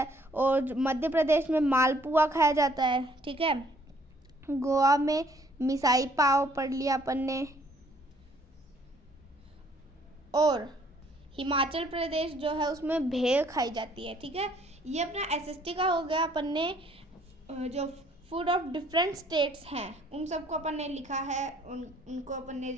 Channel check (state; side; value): normal; both; correlation 0.62